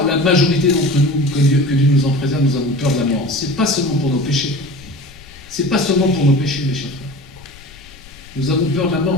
la majorité d'entre nous, que Dieu nous en préserve, nous avons peur de la mort? Ce n'est pas seulement pour nos péchés. Ce n'est pas seulement pour nos péchés, mes chers frères. Nous avons peur de la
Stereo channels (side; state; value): left; noise; rumble, 22 dB below the sound